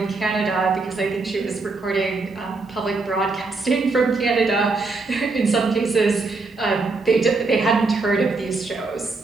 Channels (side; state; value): left; quieter; 3.8 dB